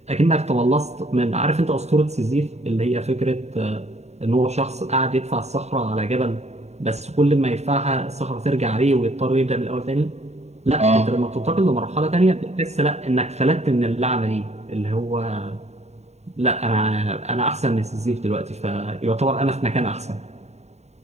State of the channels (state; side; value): late; left; 0.32 ms